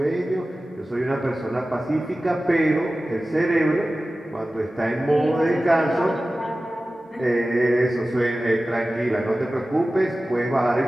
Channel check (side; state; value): both; normal; correlation 0.96